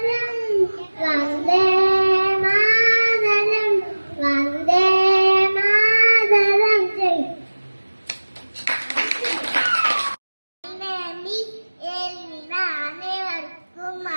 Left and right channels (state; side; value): inverted; both; correlation -1.00